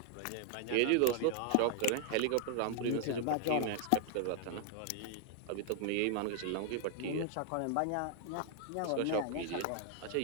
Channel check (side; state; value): both; different; correlation 0.00